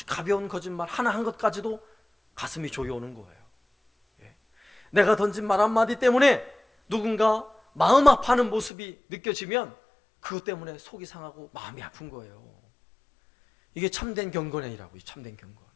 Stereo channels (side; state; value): right; drops out; at 8.7 s